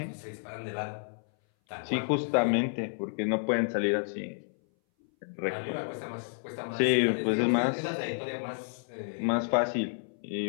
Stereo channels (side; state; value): right; silent; 57 dB below the other